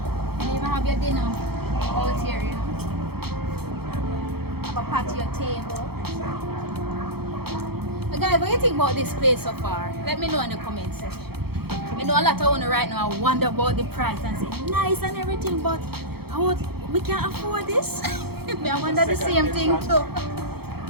And you even have your dinner out here, you know. Have a patio table. But guys, what do you think about this place so far? Let me know in the comment section. I know a lot of owners right now wonder about the price and say nice and everything, but we can't afford this. I wonder the same thing too.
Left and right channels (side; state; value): left; late; 0.96 ms